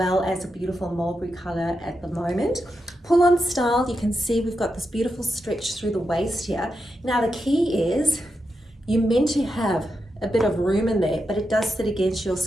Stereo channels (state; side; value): normal; both; correlation 0.86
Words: as a beautiful mulberry color at the moment. Pull on style, you can see we've got this beautiful stretch through the waist here. Now the key is you're meant to have a bit of room in there, but it does sit against your